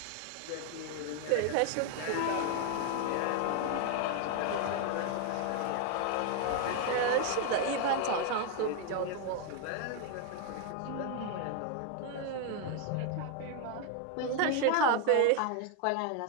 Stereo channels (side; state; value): both; different; correlation 0.01